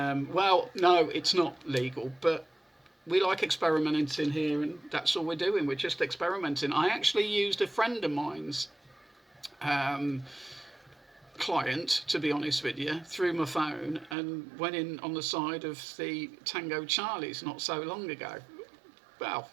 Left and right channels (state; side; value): drops out; left; at 14.2 s